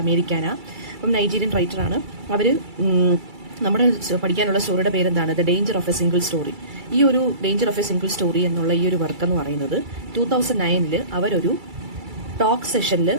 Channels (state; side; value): late; left; 2.3 ms